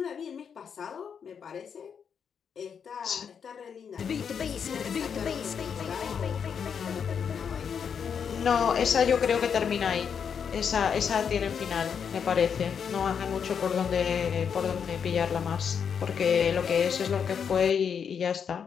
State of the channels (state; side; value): quieter; right; 7.1 dB